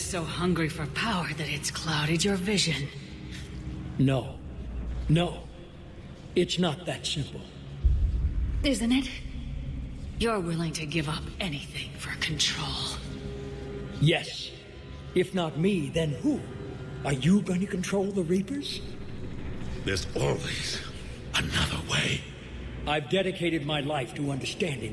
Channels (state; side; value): identical; both; correlation 1.00